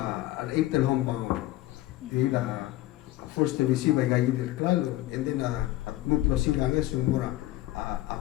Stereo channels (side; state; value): right; quieter; 16.3 dB